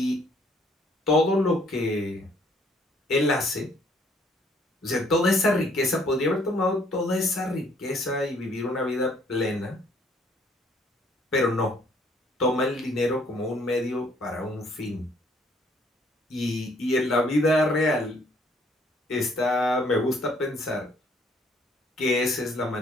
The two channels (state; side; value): normal; both; correlation 0.63